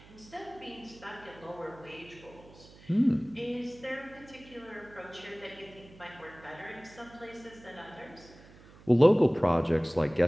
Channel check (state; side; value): noise; right; hum, 22 dB below the sound